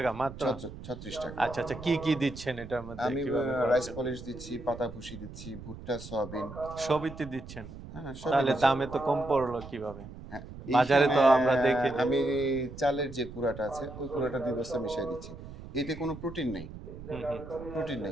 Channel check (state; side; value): noise; right; rumble, 13 dB below the sound